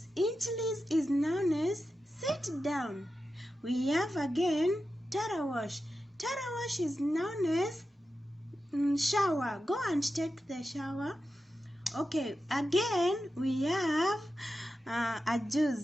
Inchlis is known as sit down. We have again tarawash. Tarawash is known as shower. Go and take the shower. Okay, again we have a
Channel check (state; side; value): normal; both; correlation 0.91